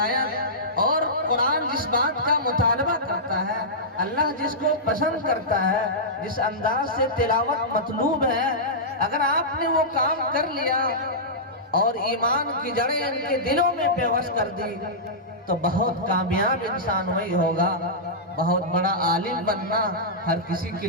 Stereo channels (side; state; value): both; normal; correlation -0.14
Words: اور قرآن جس بات کا مطالبہ کرتا ہے، اللہ جس کو پسند کرتا ہے، جس انداز سے تلاوت مطلوب ہے، اگر آپ نے وہ کام کر لیا اور ایمان کی جڑیں ان کے دلوں میں پیوست کر دی تو بہت کامیاب انسان وہی ہوگا۔ بہت بڑا عالم بننا ہر کسی کے